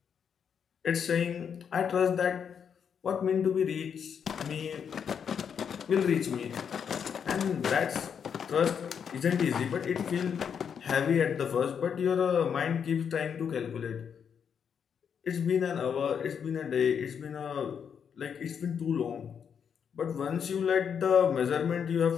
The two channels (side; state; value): right; quieter; 7.4 dB